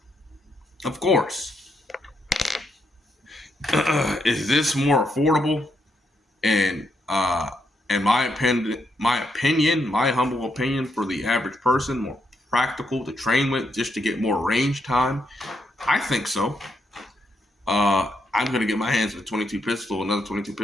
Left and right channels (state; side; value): normal; both; correlation 0.79